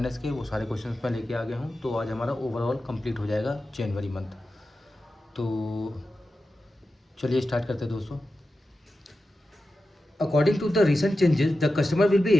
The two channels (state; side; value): normal; both; correlation 0.92